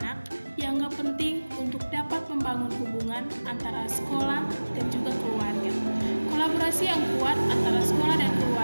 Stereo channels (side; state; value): both; inverted; correlation -1.00